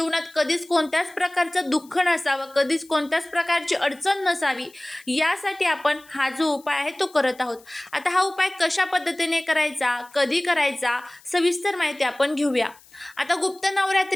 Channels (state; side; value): noise; left; hiss, 26 dB below the sound